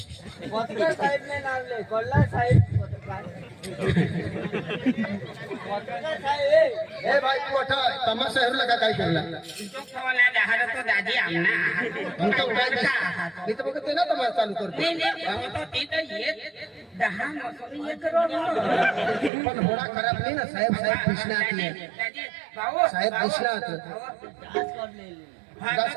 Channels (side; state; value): left; drops out; at 19.3 s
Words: पत्रकार साहेब ने नाम ले कोल्ला साहेब ए भाई तू अठा तमाशा हेरला का काय केला तो खवाला दहार तो दादी आमना मी तर काय मी तर बघते ना तमाशा चालू करतो नाही तो तिथं येत 10 मसून 1 करोड पण होडा खराब नाही ना साहेब साहेब कृष्णात दादी भाऊ साहेब कृष्णात दास